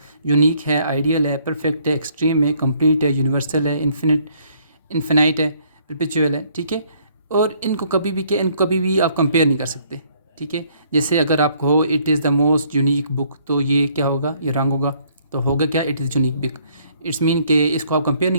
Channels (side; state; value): both; inverted; correlation -0.65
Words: यूनिक है, आइडियल है, परफेक्ट है, एक्सट्रीम है, कंप्लीट है, यूनिवर्सल है, इन्फिनाइट है, परपेचुअल है। ठीक है, और इनको कभी भी इनको कभी भी आप कंपेयर नहीं कर सकते। ठीक है, जैसे अगर आप कहो it is the most unique book, तो ये क्या होगा, ये रॉन्ग होगा। तो होगा क्या, it is unique book. It's mean कि इसको आप कंपेयर